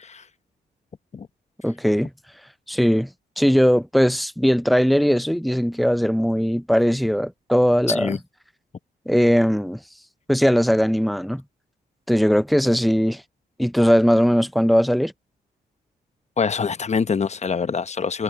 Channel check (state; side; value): normal; both; correlation 0.96